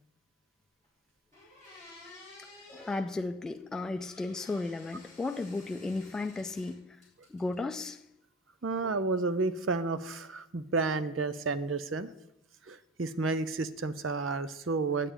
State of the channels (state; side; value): normal; both; correlation 0.35